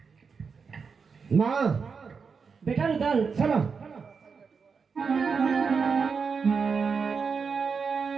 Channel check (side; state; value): left; quieter; 5.5 dB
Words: माँ बेटा रुदल, चलो।